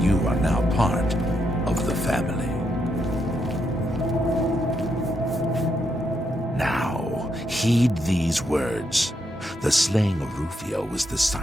you are now part of the family. Now, heed these words. The slaying of Rufio was the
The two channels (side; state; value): both; normal; correlation 0.80